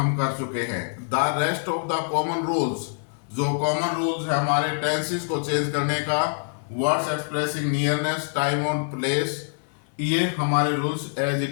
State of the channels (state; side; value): silent; right; 62 dB below the other